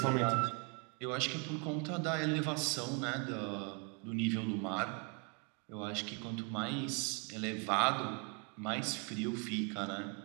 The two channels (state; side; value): quieter; left; 35.6 dB